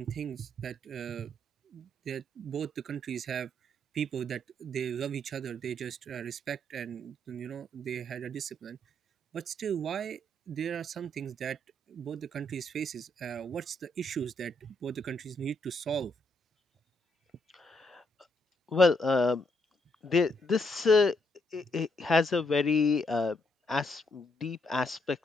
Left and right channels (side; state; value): both; normal; correlation 0.75